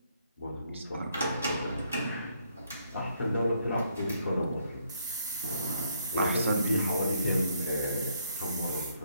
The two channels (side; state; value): both; inverted; correlation -0.72